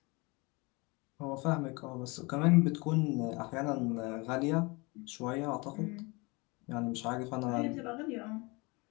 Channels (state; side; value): quieter; right; 26.6 dB